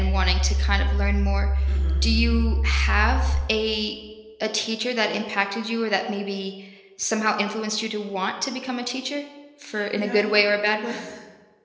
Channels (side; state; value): both; identical; correlation 1.00